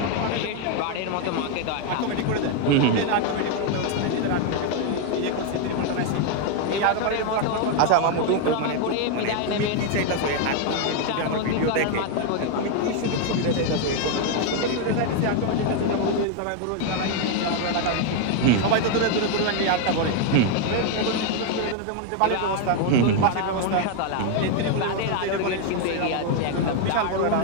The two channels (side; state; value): both; different; correlation 0.01